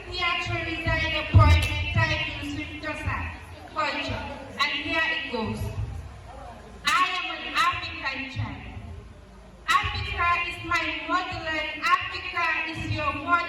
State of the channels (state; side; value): identical; both; correlation 1.00